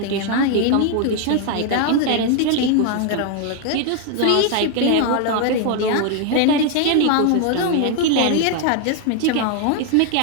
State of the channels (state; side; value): different; both; correlation 0.00